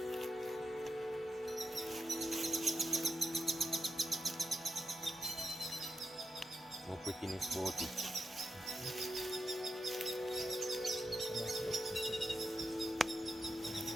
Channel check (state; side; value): normal; both; correlation 0.87